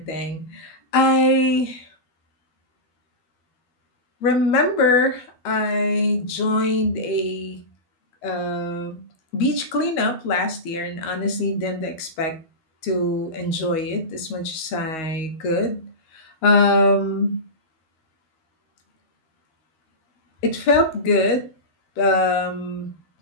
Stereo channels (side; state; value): right; late; 13 ms